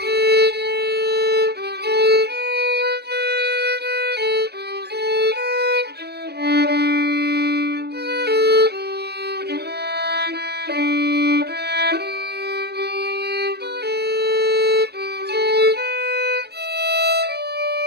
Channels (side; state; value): left; late; 0.47 ms